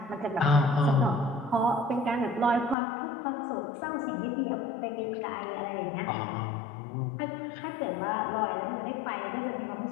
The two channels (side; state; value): right; drops out; at 2.8 s